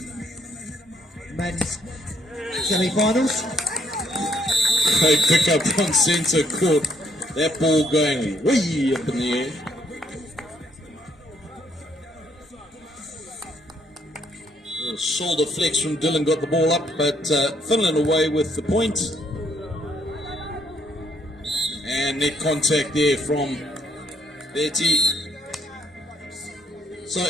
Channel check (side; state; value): both; normal; correlation 0.70